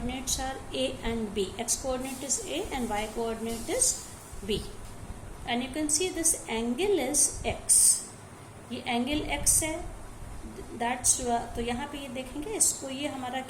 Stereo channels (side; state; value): both; identical; correlation 1.00